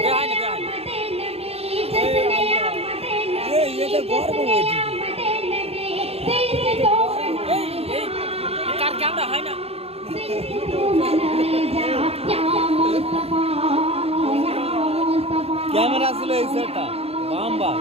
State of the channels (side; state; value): left; late; 0.29 ms